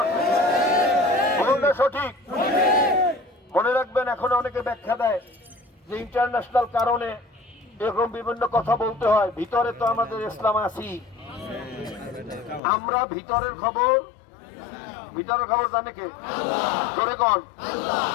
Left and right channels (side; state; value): right; drops out; at 12.6 s